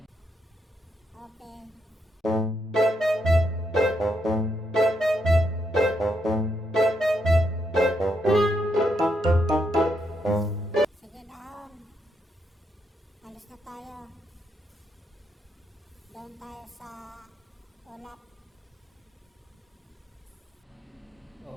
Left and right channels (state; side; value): normal; both; correlation 0.78